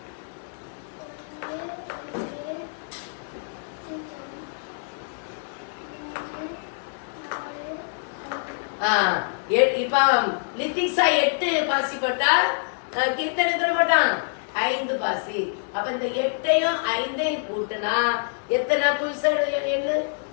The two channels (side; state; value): right; silent; digital silence